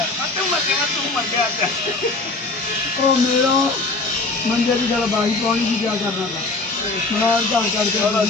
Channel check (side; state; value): right; quieter; 3.4 dB